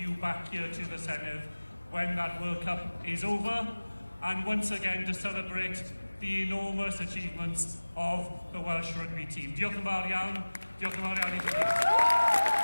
back here to the Senedd when that World Cup is over, and once again to celebrate the enormous achievements of the Welsh rugby team. Diolch yn fawr iawn. Diolch yn fawr iawn i chi.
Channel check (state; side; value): inverted; both; correlation -1.00